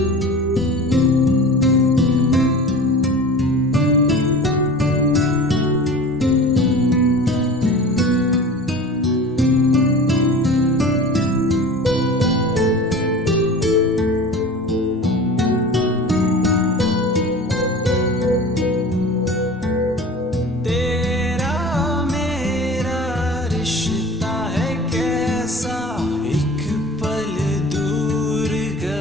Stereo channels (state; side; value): normal; both; correlation 0.38